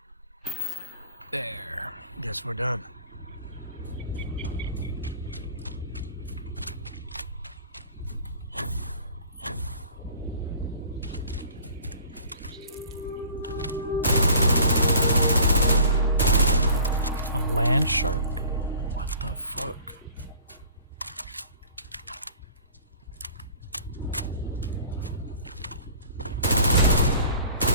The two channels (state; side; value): inverted; both; correlation -0.48